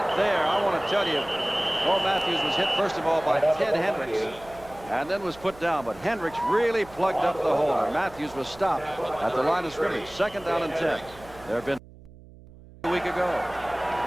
there. I want to tell you, Bo Matthews was hit first of all by Ted Hendricks and then was put down. But Hendricks really plugged up the holder. Matthews was stopped at the line of scrimmage. 2nd down and 10. There have been a week ago.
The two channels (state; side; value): noise; right; hum, 21 dB below the sound